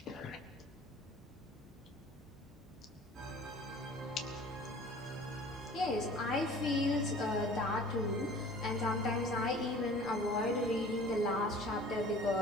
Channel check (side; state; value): both; normal; correlation 0.46